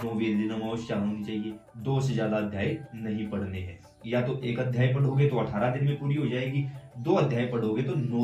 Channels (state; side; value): identical; both; correlation 1.00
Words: दिन अमावस्या होनी चाहिए। 2 से ज्यादा अध्याय नहीं पढ़ने हैं। या तो एक अध्याय पढ़ोगे तो 18 दिन में पूरी हो जाएगी, 2 अध्याय पढ़ोगे तो